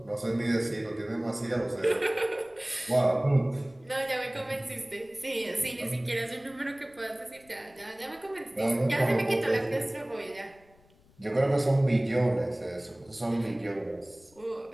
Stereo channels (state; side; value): noise; left; rumble, 29 dB below the sound